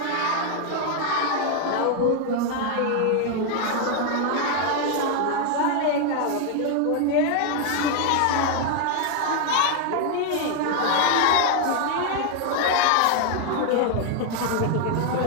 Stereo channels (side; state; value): both; different; correlation 0.00